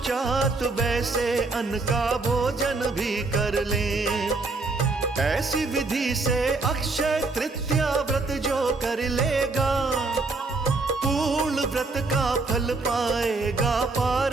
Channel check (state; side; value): quieter; left; 3.6 dB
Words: वैसे अन्न का भोजन भी कर लें। ऐसी विधि से अक्षय तृतीया व्रत जो कर लेगा, पूर्ण व्रत का फल पाएगा,